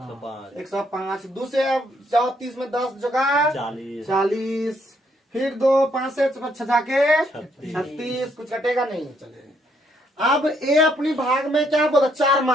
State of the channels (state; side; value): normal; both; correlation 0.71